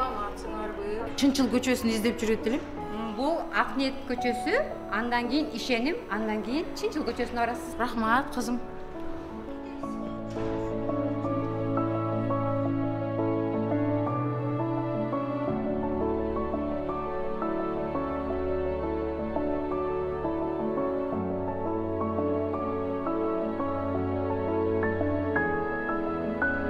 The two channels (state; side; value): identical; both; correlation 1.00